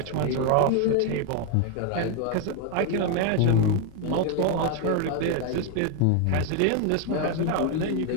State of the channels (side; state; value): both; different; correlation 0.01